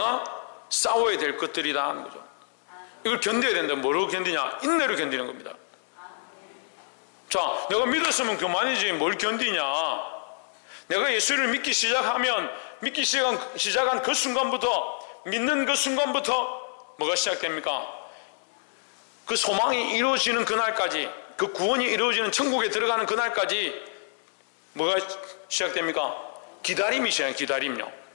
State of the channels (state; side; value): silent; right; digital silence